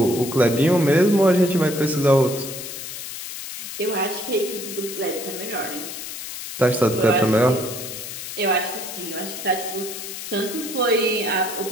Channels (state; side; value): noise; left; hiss, 9 dB below the sound